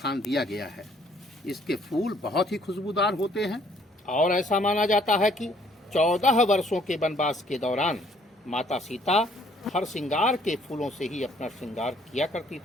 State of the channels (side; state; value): both; normal; correlation 0.62